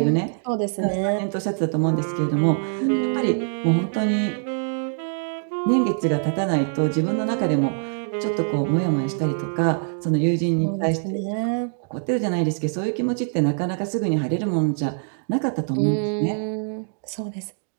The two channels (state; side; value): silent; left; digital silence